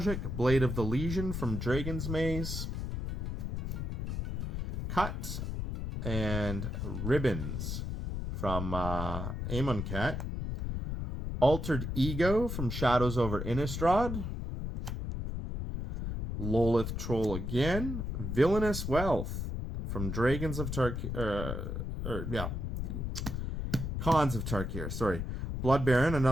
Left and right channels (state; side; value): noise; left; rumble, 3 dB below the sound